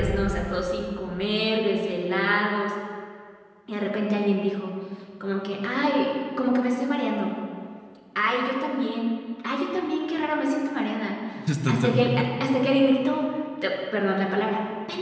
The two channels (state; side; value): identical; both; correlation 1.00